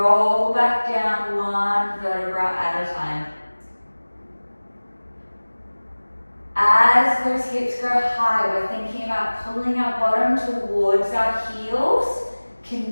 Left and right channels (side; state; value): both; inverted; correlation -1.00